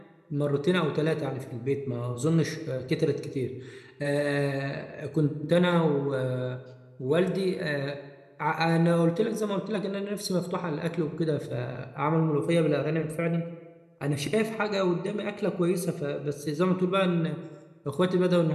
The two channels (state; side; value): identical; both; correlation 1.00